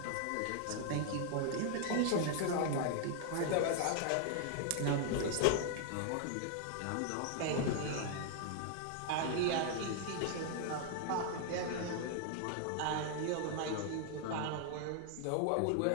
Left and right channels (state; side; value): different; both; correlation 0.00